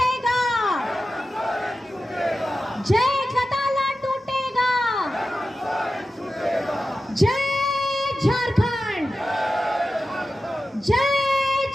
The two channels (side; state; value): both; normal; correlation 0.93